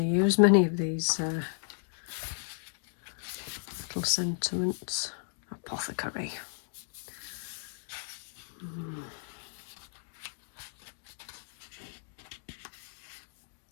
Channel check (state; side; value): silent; right; digital silence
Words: used many of these little sentiments. Apothecary.